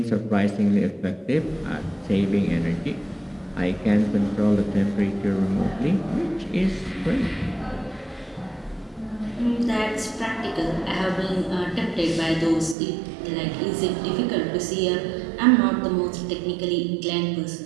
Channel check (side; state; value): left; drops out; at 12.8 s